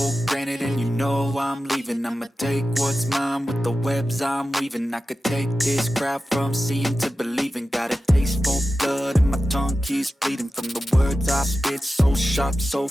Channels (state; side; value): normal; both; correlation 0.93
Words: granted and you know I'm leaving. I'ma take what's mine with the webs I'm weaving. I could take this crowd from seeing to believing. Got a taste for blood and my tongue keeps bleeding from the words I spit. So sharp, so